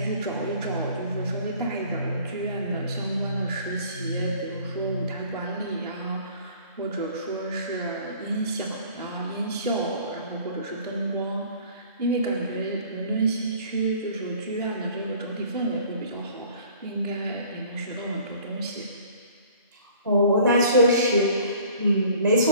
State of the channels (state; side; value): inverted; both; correlation -0.51